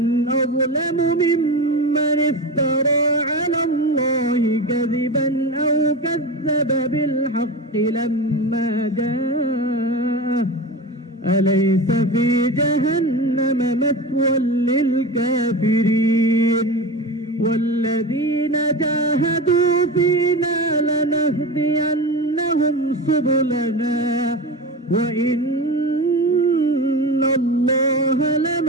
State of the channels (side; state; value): both; normal; correlation 0.26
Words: أظلم ممن افترى على الله كذبا أو كذب بالحق لما جاءه أليس في جهنم مثوى للكافرين والذين جاهدوا فينا لنهدينهم سبلنا وإن الله